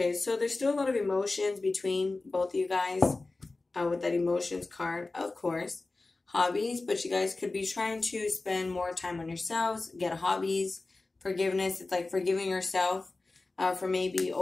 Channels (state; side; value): quieter; right; 3.4 dB